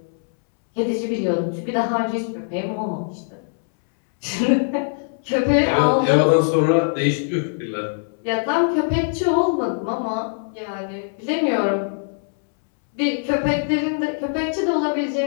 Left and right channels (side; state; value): right; silent; 64 dB below the other